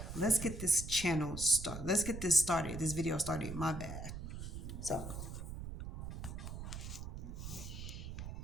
let's get this channel started. Let's get this started. This video started. My bad. So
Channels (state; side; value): noise; right; rumble, 7 dB below the sound